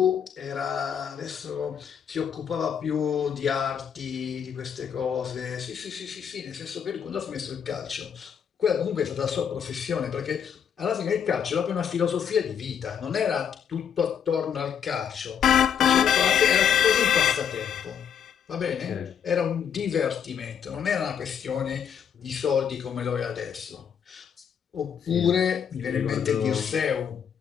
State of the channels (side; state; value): right; quieter; 7.9 dB